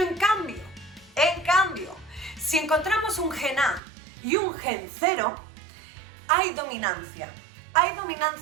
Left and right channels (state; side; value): drops out; left; at 3.8 s